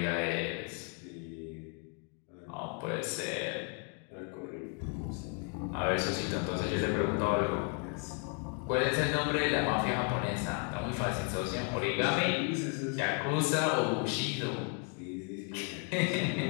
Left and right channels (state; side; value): quieter; right; 39.7 dB